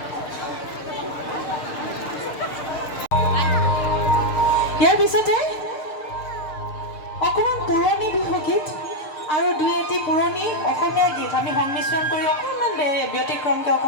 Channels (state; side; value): late; right; 6.8 ms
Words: ইয়াৰ পিছতে অকণমান পুৰণি বিহুগীত আৰু দুই এটি পুৰণি অসমীয়া গীত আমি সংমিশ্ৰণ কৰি অকণমান ব্যতিক্ৰমকৈ